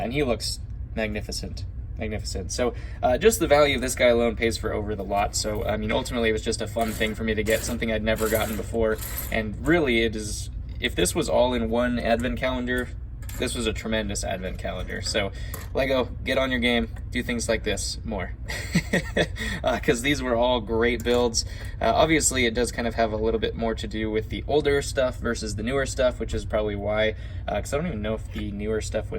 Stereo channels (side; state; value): both; identical; correlation 1.00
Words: he looks magnificent. So just the value of this guy alone pays for over the lot. So I mean, ultimately it was just a fun thing for me to get, something I'd never gotten before. And really it is, if this was all in one advent calendar, this was a tremendous advent calendar. So LEGO, get on your game, do things like this more. Because these were all great builds. Obviously it does kind of have a little bit more to do with the older stuff versus the newer stuff, which is probably why, because I don't even know if the newer stuff